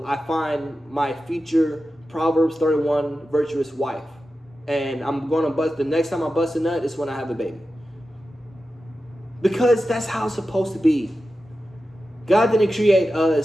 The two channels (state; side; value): normal; both; correlation 0.92